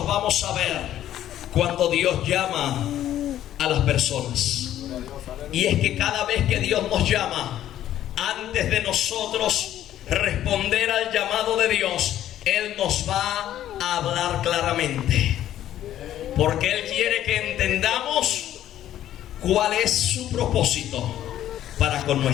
vamos a ver cuando Dios llama a las personas, y es que cada vez que Dios nos llama, antes de nosotros responder al llamado de Dios, Él nos va a hablar claramente, porque Él quiere que entendamos cuál es su propósito para con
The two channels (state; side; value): quieter; right; 12.1 dB